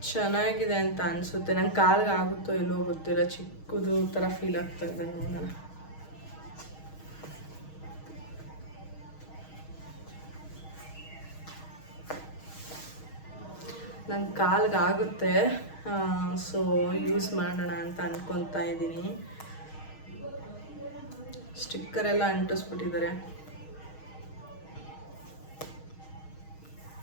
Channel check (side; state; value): right; late; 6.4 ms